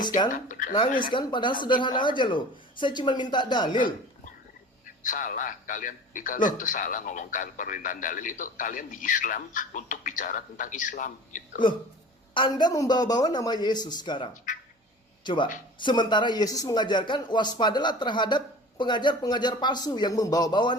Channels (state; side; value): normal; both; correlation 0.40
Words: kan? Alkitab berdasarkan Nangis kan? Padahal sederhana aja loh. Saya cuma minta dalil. Salah, kalian Loh. itu salah ngomongkan permintaan dalil itu. Kalian di Islam untuk bicara tentang Islam gitu. Loh, Anda membawa-bawa nama Yesus sekarang. Coba, sementara Yesus mengajarkan waspadalah terhadap pengajar-pengajar palsu yang membawa-bawa